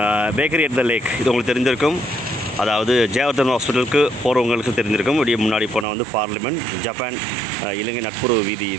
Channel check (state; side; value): drops out; left; at 5.9 s